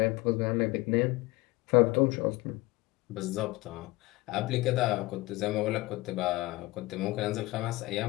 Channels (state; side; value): quieter; right; 20.7 dB